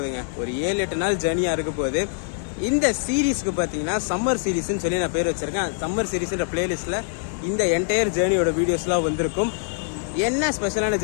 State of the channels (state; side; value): silent; right; 63 dB below the other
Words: ஒரு 7-8 நாள் ஜேர்னியா இருக்க போகுது. இந்த சீரீஸ்க்கு பாத்தீங்கன்னா சம்மர் சீரீஸ்னு சொல்லி நான் பேர் வச்சிருக்கேன். சம்மர் சீரீஸ்ன்ற பிளேலிஸ்ட்ல இந்த என்டையர் ஜேர்னியோட வீடியோஸ்லாம் வந்திருக்கும். என்ன ஸ்பெஷலான